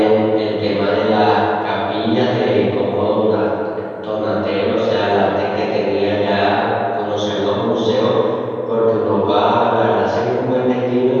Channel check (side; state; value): both; identical; correlation 1.00